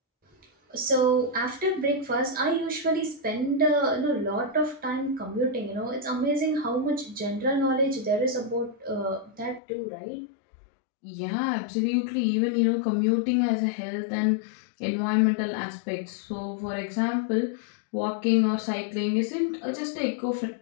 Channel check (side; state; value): right; drops out; at 9.6 s